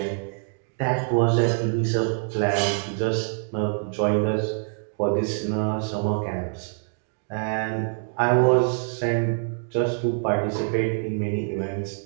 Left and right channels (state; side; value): silent; left; digital silence